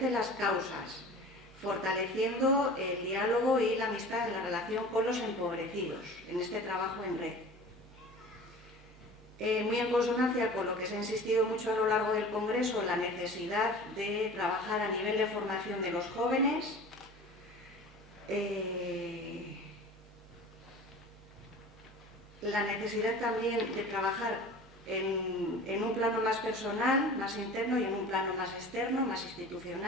las causas, fortaleciendo el diálogo y la amistad en la relación con los empobrecidos en este trabajo en red. Muy en consonancia con lo que se ha insistido mucho a lo largo del Congreso, la necesidad de trabajar a nivel de formación de los jóvenes, la necesidad también de trabajar en un plano más personal, más interno, y en un plano más externo, más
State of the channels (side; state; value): both; normal; correlation 0.40